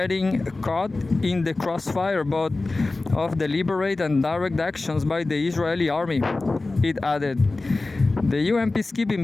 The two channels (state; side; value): quieter; right; 3.3 dB